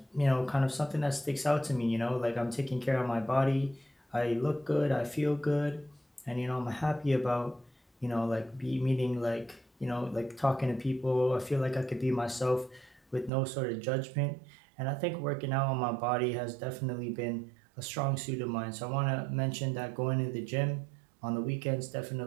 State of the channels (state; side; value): drops out; left; at 13.3 s